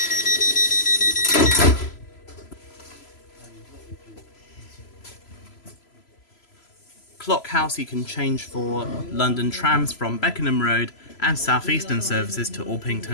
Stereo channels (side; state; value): right; late; 3.0 ms